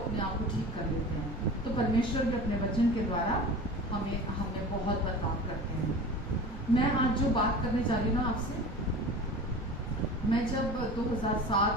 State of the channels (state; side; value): normal; both; correlation 0.36